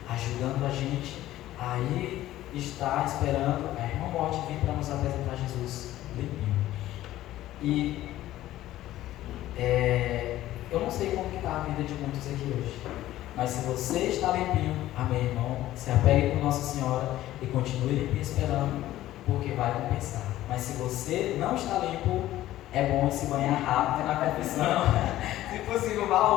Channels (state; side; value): quieter; right; 14.5 dB